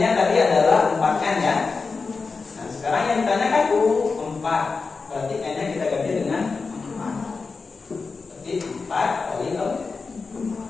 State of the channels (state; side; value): quieter; right; 4.5 dB